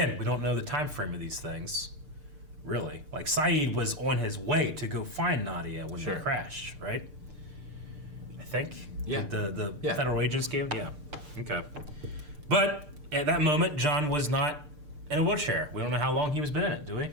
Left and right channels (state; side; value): late; left; 6.7 ms